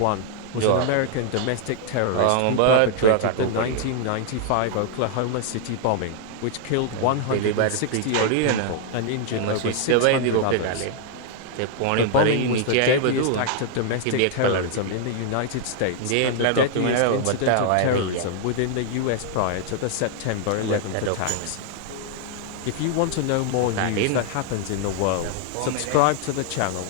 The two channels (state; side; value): different; both; correlation 0.00